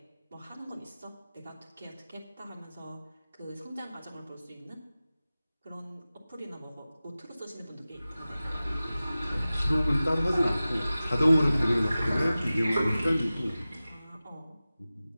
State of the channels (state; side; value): inverted; both; correlation -0.96